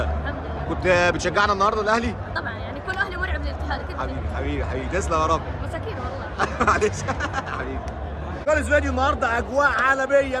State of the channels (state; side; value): identical; both; correlation 1.00